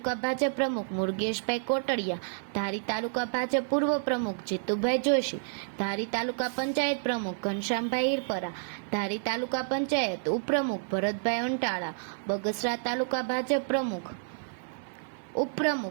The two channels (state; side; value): silent; left; 58 dB below the other